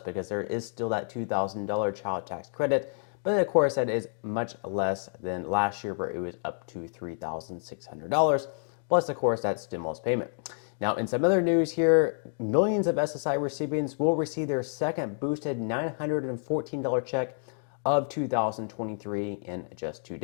there is still that $2,000 child tax credit, but of course that is much less than last year where it was up to $3,600, plus of course that stimulus payment. Now, in some other news here, millions of SSI recipients will receive their second boosted $914 check of 2023 in just 2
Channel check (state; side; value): silent; right; digital silence